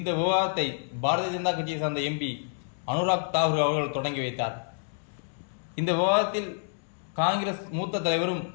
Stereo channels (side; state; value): right; silent; digital silence